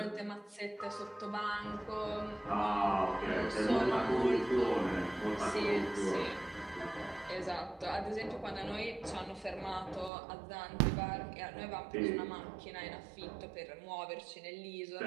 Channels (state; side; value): drops out; left; at 10.1 s